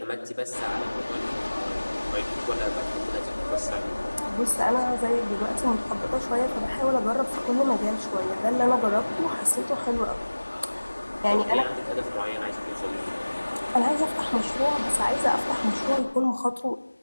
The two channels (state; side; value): inverted; both; correlation -1.00